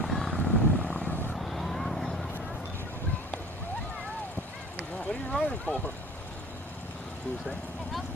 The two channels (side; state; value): both; normal; correlation 0.45